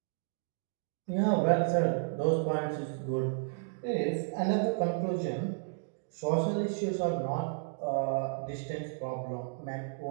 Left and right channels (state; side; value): silent; left; digital silence